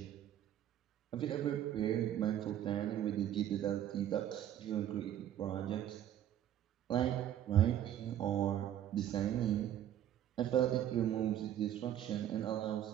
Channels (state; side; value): quieter; left; 11.2 dB